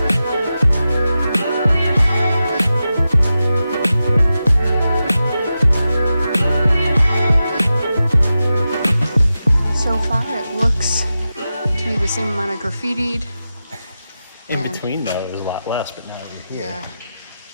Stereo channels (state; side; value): inverted; both; correlation -0.91